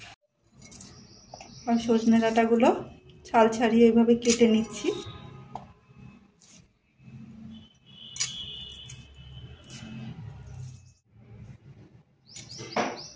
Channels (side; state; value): both; identical; correlation 1.00